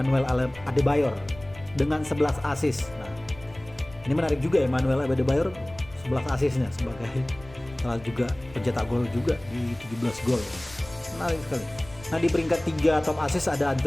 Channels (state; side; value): noise; left; rumble, 20 dB below the sound